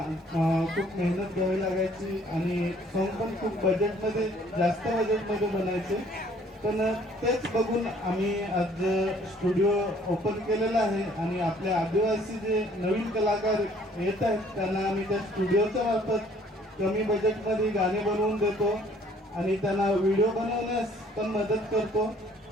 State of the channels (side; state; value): both; normal; correlation 0.58